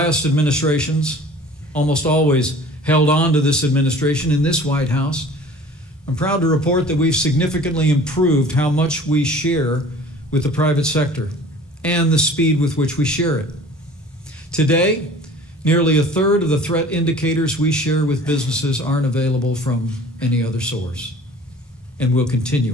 administrations almost always held on to this administration in this White House, I'm proud to report that we've significantly improved how much we share with the private sector and the speed with which we share it. Today, nearly a third of the threat indicators we share with businesses aren't available from any other source, and we'll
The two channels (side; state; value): both; normal; correlation 0.46